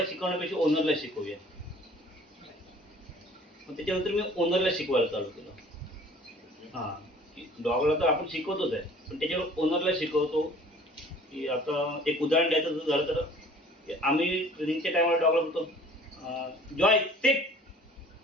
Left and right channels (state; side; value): normal; both; correlation 0.50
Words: शिकवण्यापेक्षा ओनरला शिकवूया. मग त्याच्यानंतर मी ओनरला शिकवायला चालू केलं. डॉगला तर आपण शिकवतोच आहे, पण त्याच्यावर ओनरला शिकवतो. की आता एक उदाहरण द्यायचं झालं तर की आम्ही ट्रेनिंगच्या टायमाला डॉगला बोलतो जॉय सिट.